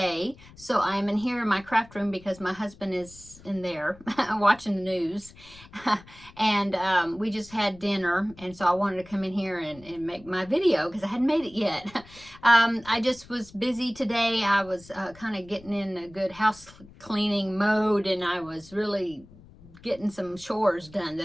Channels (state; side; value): noise; left; rumble, 22 dB below the sound